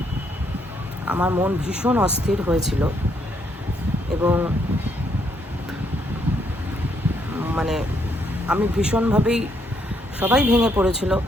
আমার মন ভীষণ অস্থির হয়েছিল, এবং মানে আমি ভীষণভাবেই, সবাই ভেঙে পড়েছিল,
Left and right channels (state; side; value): normal; both; correlation 0.73